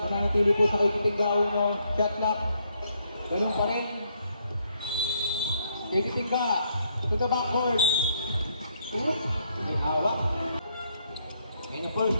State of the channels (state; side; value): inverted; both; correlation -0.73